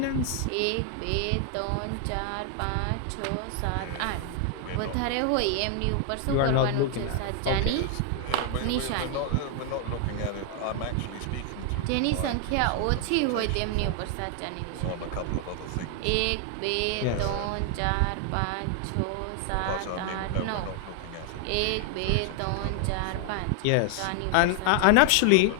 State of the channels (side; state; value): both; different; correlation 0.00